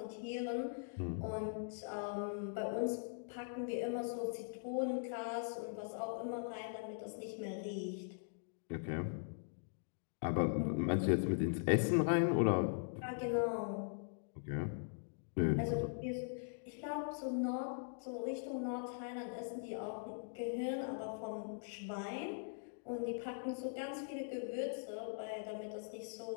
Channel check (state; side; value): silent; right; digital silence